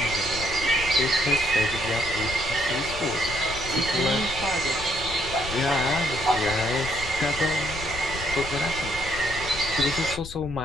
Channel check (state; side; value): noise; left; rumble, 11 dB below the sound